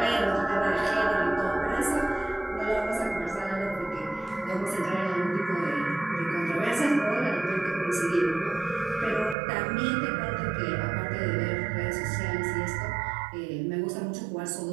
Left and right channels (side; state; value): left; drops out; at 9.3 s